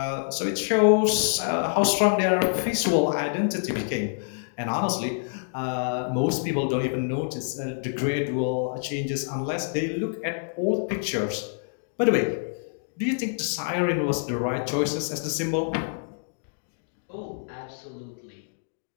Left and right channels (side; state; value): right; silent; digital silence